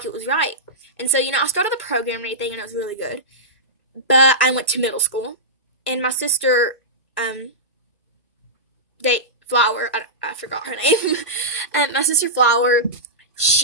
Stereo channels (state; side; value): normal; both; correlation -0.14